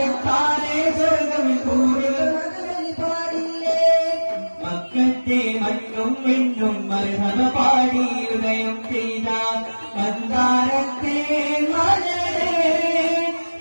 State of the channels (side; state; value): both; inverted; correlation -1.00